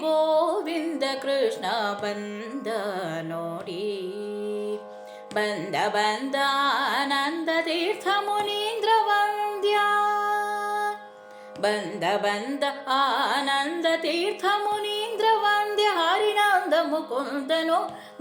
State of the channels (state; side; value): identical; both; correlation 1.00